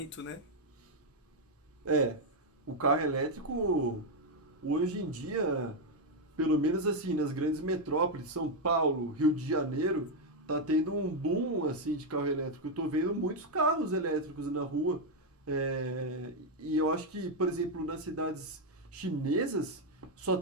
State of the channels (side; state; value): both; normal; correlation 0.02